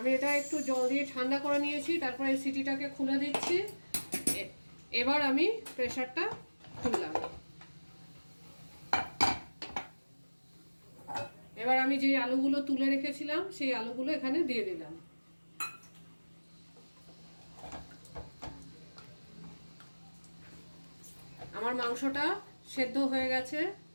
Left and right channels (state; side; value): inverted; both; correlation -1.00